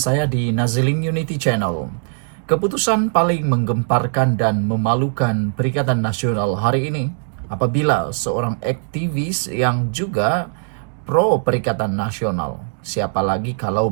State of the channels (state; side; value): silent; left; digital silence